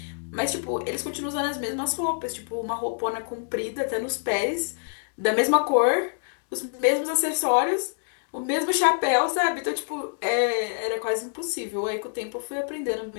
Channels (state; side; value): silent; right; digital silence